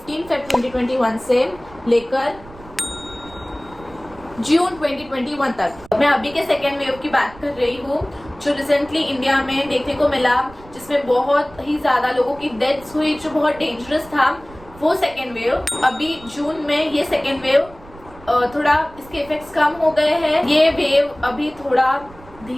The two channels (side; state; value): right; noise; rumble, 21 dB below the sound